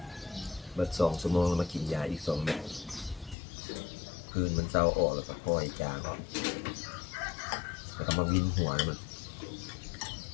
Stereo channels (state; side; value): drops out; right; at 3.4 s